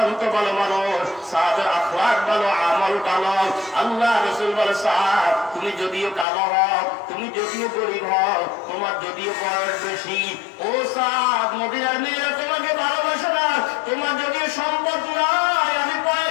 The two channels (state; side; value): drops out; right; at 6.2 s